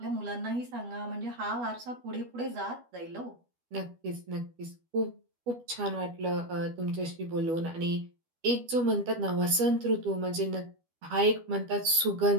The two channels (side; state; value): left; late; 12 ms